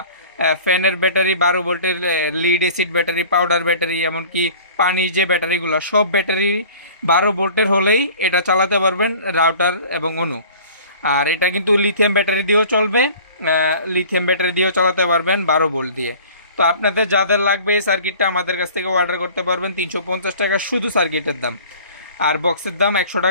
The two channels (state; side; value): inverted; both; correlation -0.46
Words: ফ্যানের ব্যাটারি, 12 ভোল্টের lead acid battery, powder battery, এমনকি পানির যে ব্যাটারিগুলো, সব ব্যাটারি 12 ভোল্টের হলেই এটা চালাতে পারবেন রাউটার এবং অনু। আর এটা কিন্তু লিথিয়াম ব্যাটারি দিয়েও চলবে, লিথিয়াম ব্যাটারি দিয়েও চালাতে পারবেন 12 ভোল্ট দিয়ে। তো আপনাদের যাদের লাগবে এই সার্কিটটা আমাদের কাছ থেকে অর্ডার করতে পারবেন। 350 টাকা শুধু সার্কিটের দাম, আর বক্সের দাম 100